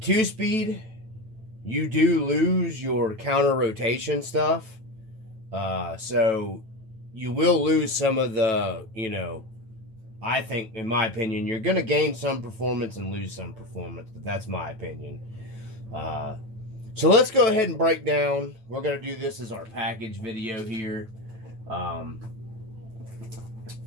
you do lose your counter rotation stuff. So you will lose some of the, I think, in my opinion, you're going to gain some performance and lose some performance, but that's my opinion. So let's go ahead and break down. We're going to do this as our package video here.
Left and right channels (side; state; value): left; late; 9.1 ms